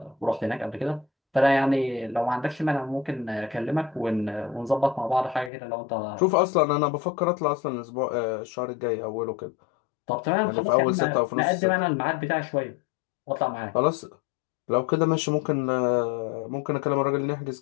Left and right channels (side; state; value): right; drops out; at 5.5 s